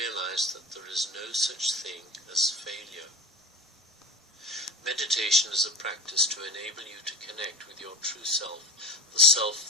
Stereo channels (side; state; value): both; normal; correlation 0.32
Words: that there is no such thing as failure. Meditation is a practice to enable you to connect with your true self, the